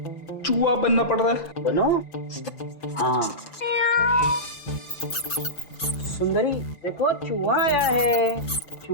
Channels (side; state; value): right; late; 5.9 ms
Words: चूहा बनना पड़ रहा है। बनो। हाँ। सुंदरी देखो, चूहा आया है।